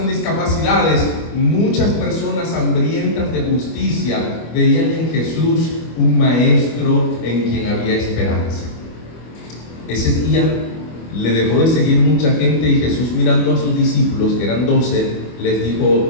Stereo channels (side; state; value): right; late; 25 ms